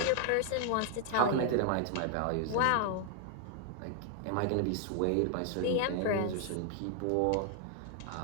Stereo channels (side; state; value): both; different; correlation 0.00